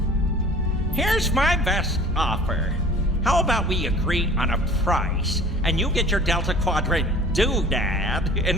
Here's my best offer. How about we agree on a price, and you get your Delta Quadrant doodad, and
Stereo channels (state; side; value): normal; both; correlation 0.46